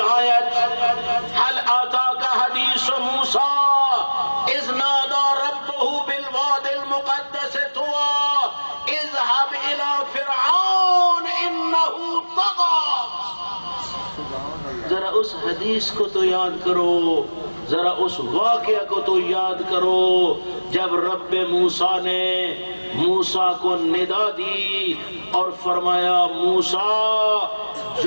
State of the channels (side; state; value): both; inverted; correlation -1.00